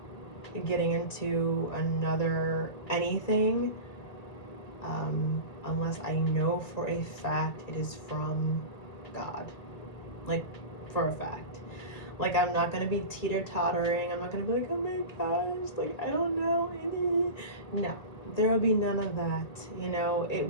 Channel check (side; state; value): right; late; 1.9 ms